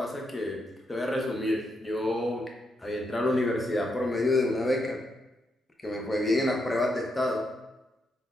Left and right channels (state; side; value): normal; both; correlation 0.81